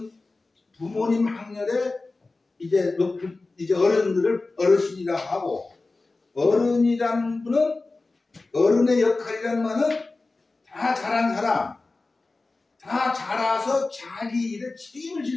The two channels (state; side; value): quieter; right; 3.4 dB